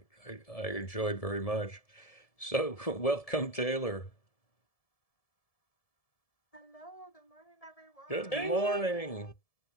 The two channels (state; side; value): late; right; 1.7 ms